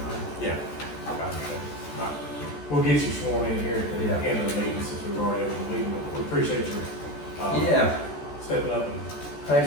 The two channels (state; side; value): late; right; 14 ms